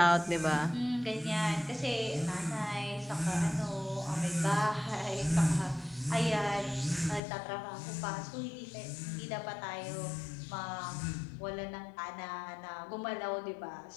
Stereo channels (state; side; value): drops out; right; at 7.2 s